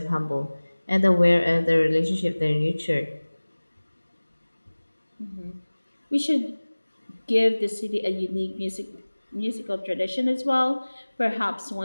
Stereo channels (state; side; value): inverted; both; correlation -1.00